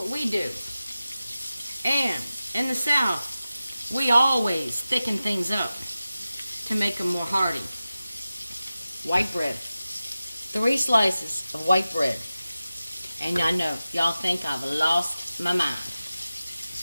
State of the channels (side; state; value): both; inverted; correlation -0.95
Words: we do. And in the South, we always thicken things up to make them more hearty. White bread. 3 slices of white bread. And I know, y'all think I've lost my mind.